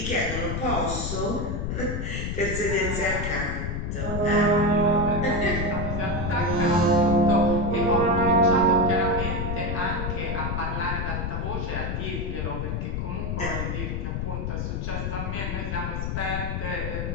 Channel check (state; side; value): noise; left; rumble, 2 dB below the sound